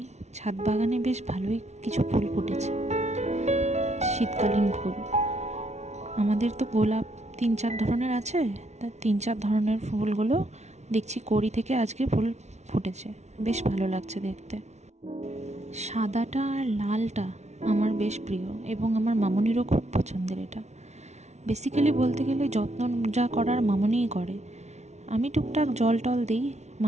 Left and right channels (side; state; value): left; late; 0.32 ms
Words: ছাদ বাগানে বেশ ভালোই কিছু ফুল ফুটেছে, শীতকালীন ফুল। আমাদের তো গোলাপ 3-4 ধরনের আছে, তার 3-4 ধরনের ফুলগুলো দেখছি কড়ি থেকে আজকে ফুল ফুটেছে, বেশ ভালো লাগছে দেখতে। সাদাটা আর লালটা আমার বেশ প্রিয় এবং আমার মামনিরও খুব পছন্দের। এটা বেসিক্যালি বলতে গেলে যত্ন যা করার মামনিই করে। আমি টুকটাক জল টল দিই